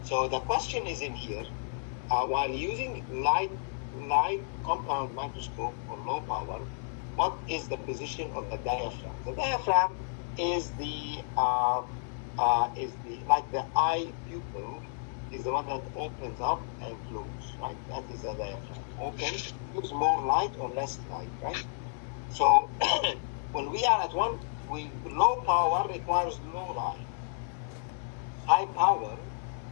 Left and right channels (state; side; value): silent; right; digital silence